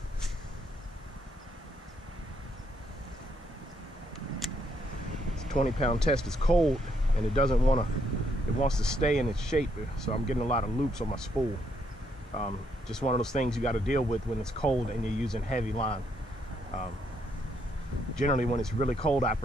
It's a 20-pound test. It's cold and it doesn't want to, it wants to stay in its shape. So I'm getting a lot of loops on my spool. Just one of those things you got to deal with when it's cold and you're using heavy line. Generally when it's really cold, I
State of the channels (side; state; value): both; normal; correlation 0.74